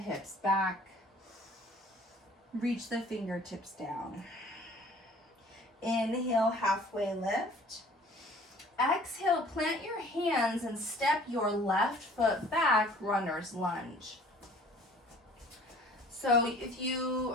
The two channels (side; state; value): both; normal; correlation 0.51